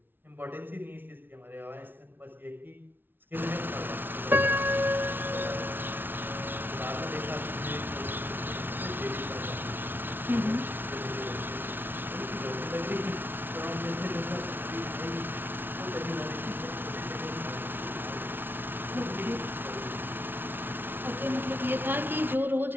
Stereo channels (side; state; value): left; late; 0.099 ms